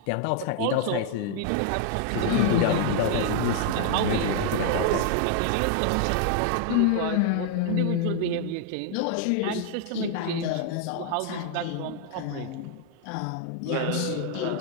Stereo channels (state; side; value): different; both; correlation 0.00